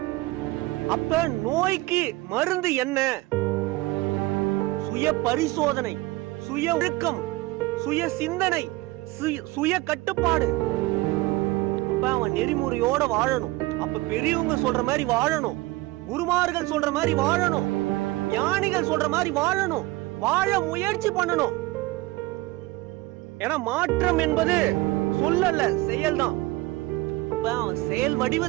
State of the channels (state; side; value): quieter; left; 20.1 dB